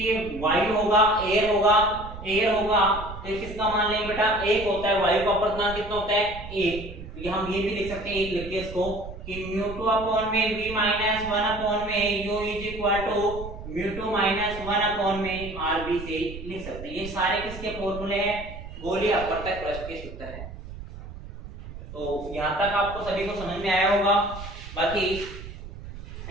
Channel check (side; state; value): right; noise; rumble, 12 dB below the sound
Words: वायु होगा एयर होगा तो किसका मान लेंगे बेटा 1 होता है। वायु का अपवर्तनांक कितना होता है 1। तो हम ये भी लिख सकते हैं एक लिख के इसको कि μ2 में v माइनस 1 में u is equal to μ2 minus 1 में rb से लिख सकते हैं। ये सारे किसके फॉर्मूले हैं गोलीय अपवर्तक प्रश्न के सूत्र हैं। तो यहाँ तक आपको सभी को समझ में आया होगा। बाकी